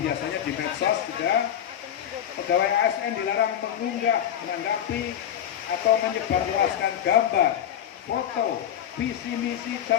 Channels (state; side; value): quieter; right; 10.1 dB